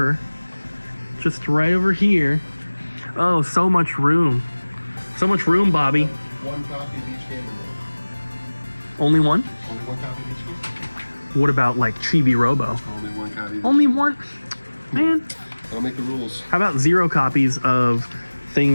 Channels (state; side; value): inverted; both; correlation -1.00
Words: Just right over here. Oh, so much room. So much room, Bobby. One copy of each game in there. Only one? Only one copy of each game? What about like Chibi Robo? Only one copy. Only one? Man. That'll make the rules. How about 0 copies of